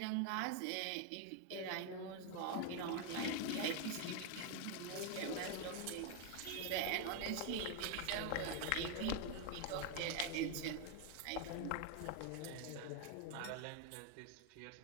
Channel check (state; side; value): different; both; correlation 0.01